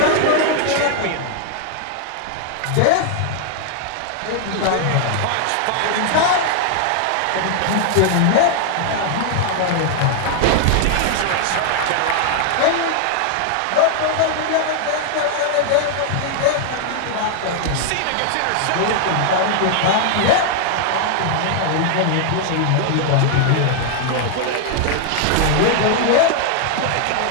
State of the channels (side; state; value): both; different; correlation 0.00